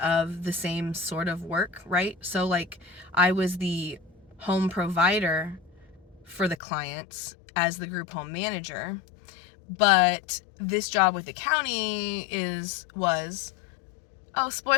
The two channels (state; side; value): drops out; right; at 6.6 s